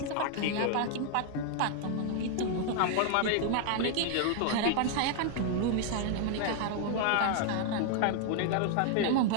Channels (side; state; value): both; different; correlation 0.00